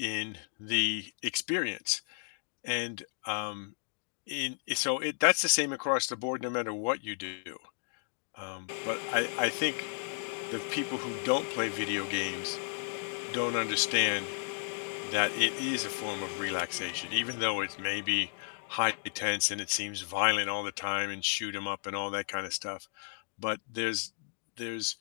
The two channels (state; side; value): silent; right; 56 dB below the other